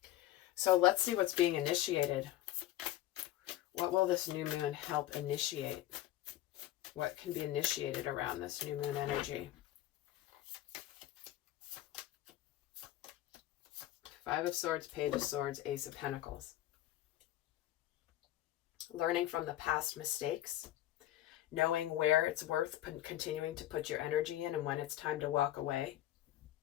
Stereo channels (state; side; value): quieter; right; 14.0 dB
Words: So let's see what's being initiated. What will this new moon help initiate? What can be initiated around this new moon energy? Five of Swords, Page of Swords, Ace of Pentacles. Learning from the past mistakes. Knowing where it's worth continuing to put your energy in and when it's time to walk away.